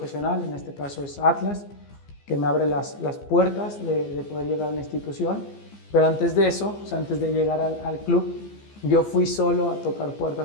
en este caso es Atlas, que me abre las puertas de poder llegar a una institución, pero antes de eso, o sea, antes de llegar al club, yo fui solo a tocar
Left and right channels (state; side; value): late; right; 15 ms